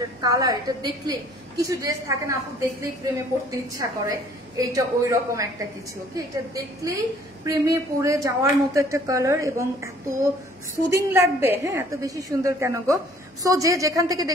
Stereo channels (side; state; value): both; normal; correlation 0.57